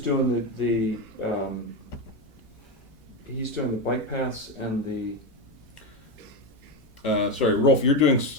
doing he's doing the bike paths and the. Sorry, Rolf, you're doing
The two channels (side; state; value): both; normal; correlation 0.12